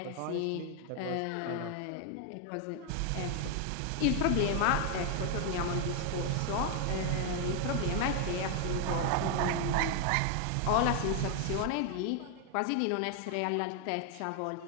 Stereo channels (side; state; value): both; different; correlation 0.00